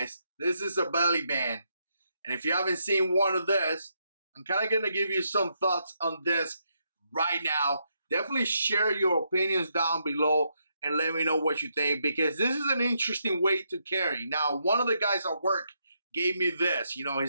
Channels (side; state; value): both; inverted; correlation -0.79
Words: This is a belly band. And if you haven't seen one of this, I'm kind of going to give you some thoughts on this right now. Definitely share your opinions down below and let me know what you think, because this is an interesting way to carry. Now, one of the guys at work gave me this. You know,